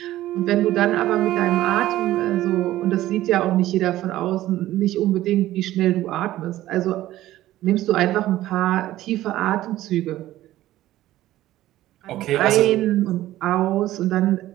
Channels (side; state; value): left; quieter; 14.8 dB